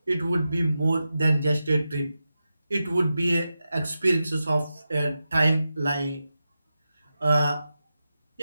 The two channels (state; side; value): inverted; both; correlation -0.91